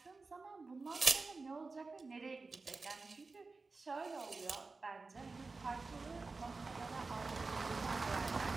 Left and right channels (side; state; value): left; quieter; 3.9 dB